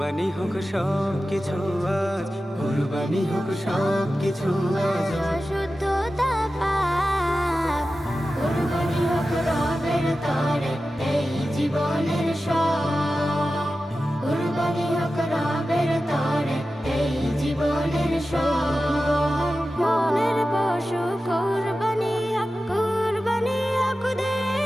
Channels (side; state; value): both; normal; correlation 0.94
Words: হোক সব কিছু আজ কুরবানি হোক সব কিছু আজ শুদ্ধতা পাপ কুরবানি হোক রবের তরে এই জীবনের সব কুরবানি হোক রবের তরে এই জীবনের সব মনের পশু কুরবানি হোক